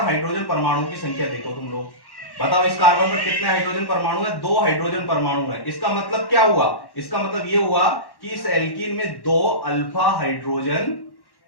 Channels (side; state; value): right; late; 1.1 ms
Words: हाइड्रोजन परमाणु की संख्या देखो तुम लोग, बताओ इस कार्बन पर कितने हाइड्रोजन परमाणु है? 2 हाइड्रोजन परमाणु है। इसका मतलब क्या हुआ? इसका मतलब ये हुआ कि इस एल्कीन में 2 अल्फा हाइड्रोजन,